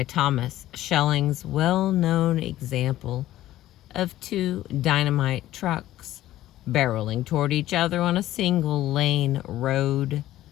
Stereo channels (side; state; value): right; quieter; 14.3 dB